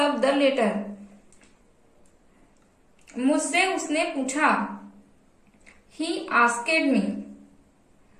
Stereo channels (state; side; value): identical; both; correlation 1.00